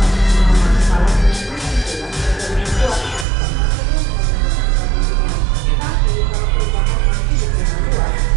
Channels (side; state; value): left; drops out; at 3.2 s